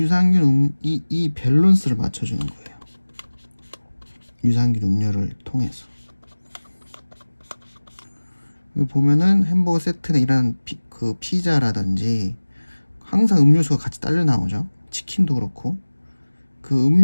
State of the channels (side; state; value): both; inverted; correlation -1.00